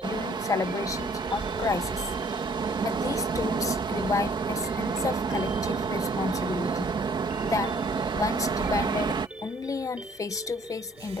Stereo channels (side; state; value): both; normal; correlation 0.59